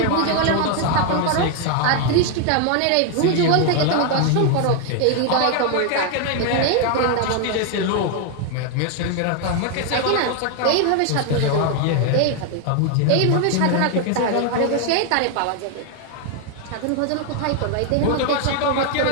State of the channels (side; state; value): both; different; correlation 0.01